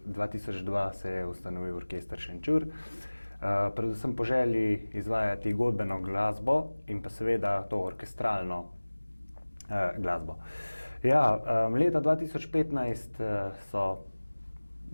2002 se je ustanovil orkester Šenčur. Predvsem po želji izvajati godbeno glasbo in pa seveda to orkestralno glasbo. Ja, leta 2015 so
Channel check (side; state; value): both; inverted; correlation -1.00